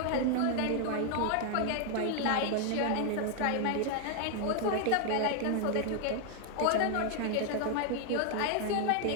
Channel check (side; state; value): both; different; correlation 0.00